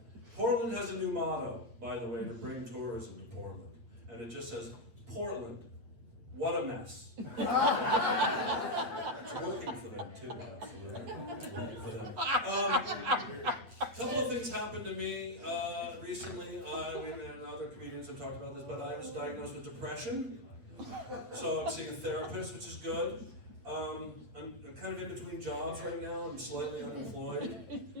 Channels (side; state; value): left; late; 8.9 ms